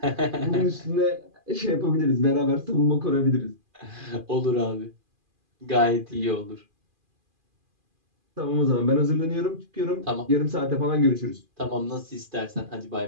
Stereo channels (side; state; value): left; late; 2.4 ms